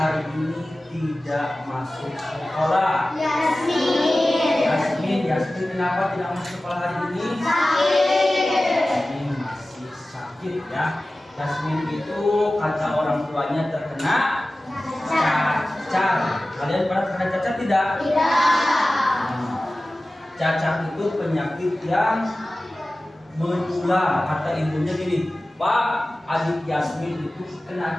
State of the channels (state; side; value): normal; both; correlation 0.96